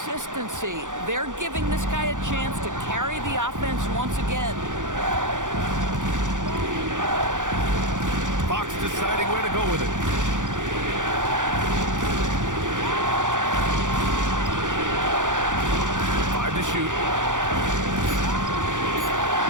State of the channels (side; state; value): left; late; 0.87 ms